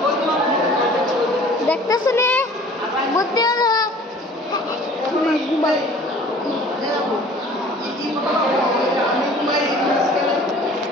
দেখতেছে নে বুদ্ধি হলো।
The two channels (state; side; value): normal; both; correlation 0.49